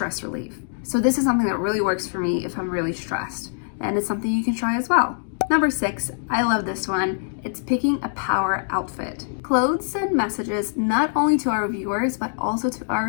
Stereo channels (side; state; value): right; silent; digital silence